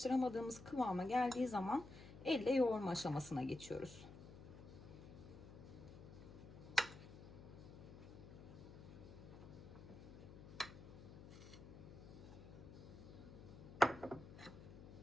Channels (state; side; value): noise; left; hum, 14 dB below the sound